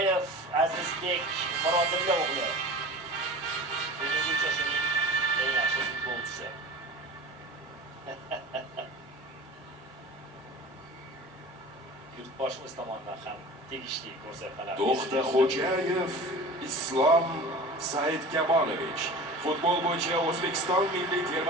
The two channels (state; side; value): normal; both; correlation 0.37